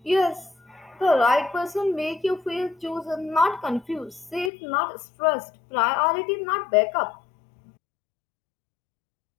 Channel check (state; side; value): drops out; right; at 4.5 s